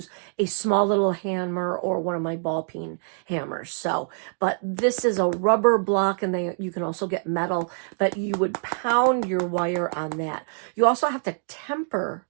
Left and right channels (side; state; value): left; silent; digital silence